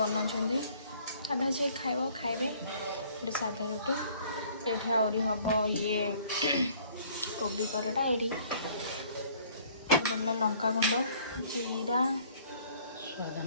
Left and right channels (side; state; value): both; inverted; correlation -0.57